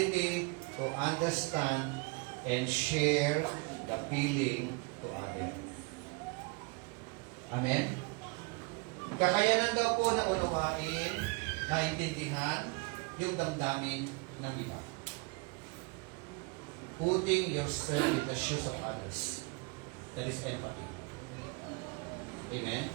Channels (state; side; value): quieter; left; 29.2 dB